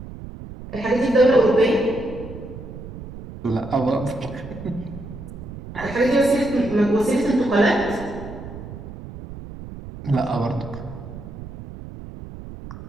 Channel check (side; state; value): right; noise; rumble, 12 dB below the sound